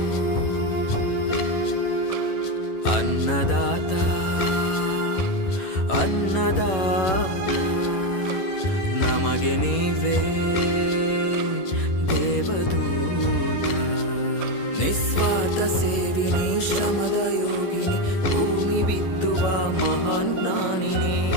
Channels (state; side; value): late; right; 11 ms